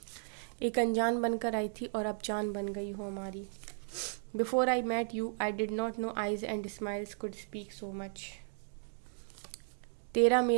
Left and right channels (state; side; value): silent; left; digital silence